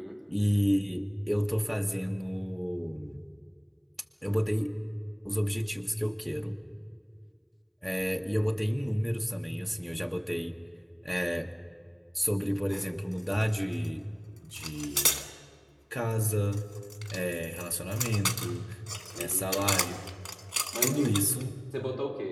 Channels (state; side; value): identical; both; correlation 1.00